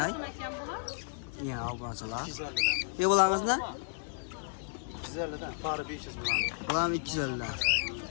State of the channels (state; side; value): silent; right; digital silence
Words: Yana obunachilar. 250'den. Bularimiz ne? 250'den, para 500 dolar. Bular 250 dan.